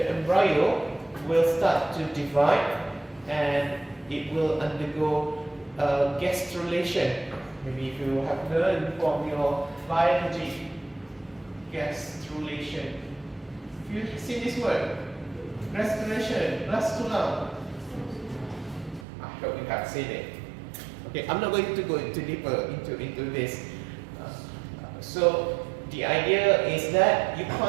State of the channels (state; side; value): drops out; left; at 19.1 s